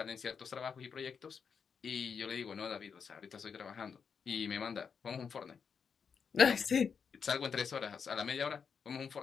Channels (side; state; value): right; quieter; 6.3 dB